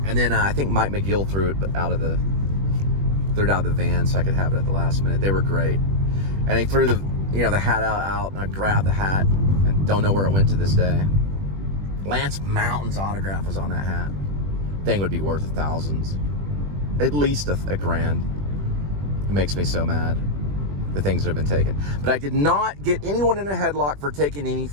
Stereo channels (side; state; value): left; late; 21 ms